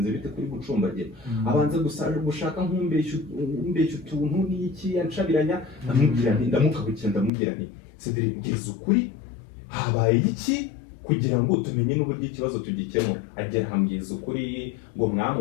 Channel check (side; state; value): right; drops out; at 7.3 s